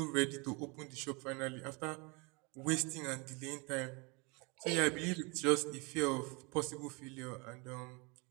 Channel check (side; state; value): left; quieter; 29.7 dB